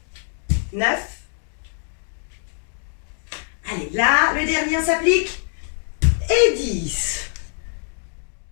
9. Allez, là, le dernier s'applique. Et 10.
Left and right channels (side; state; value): right; silent; digital silence